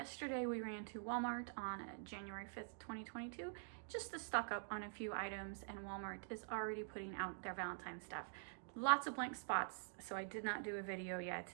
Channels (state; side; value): silent; left; digital silence